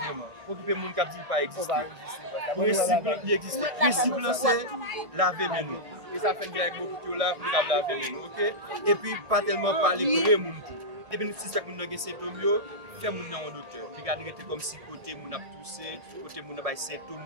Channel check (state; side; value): late; left; 1.6 ms